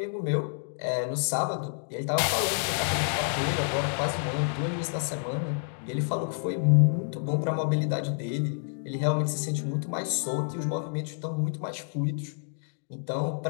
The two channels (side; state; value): right; silent; digital silence